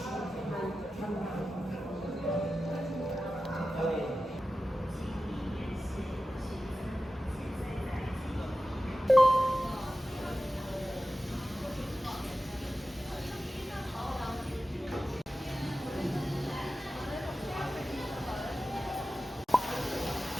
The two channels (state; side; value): normal; both; correlation 0.94